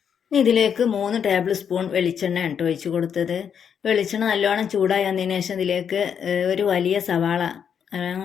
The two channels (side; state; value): right; quieter; 7.7 dB